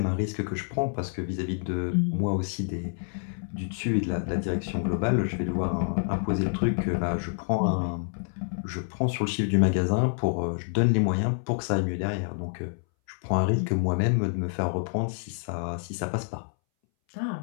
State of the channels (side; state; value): right; silent; 60 dB below the other